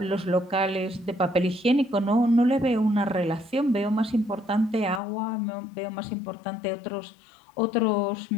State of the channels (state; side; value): drops out; right; at 5.0 s